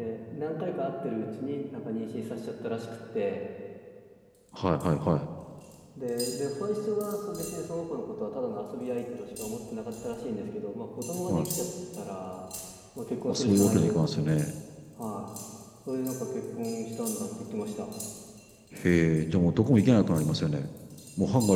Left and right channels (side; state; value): both; identical; correlation 1.00